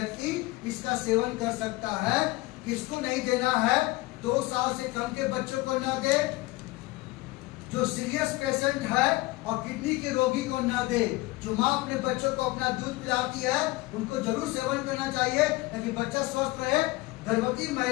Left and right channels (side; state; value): right; quieter; 20.9 dB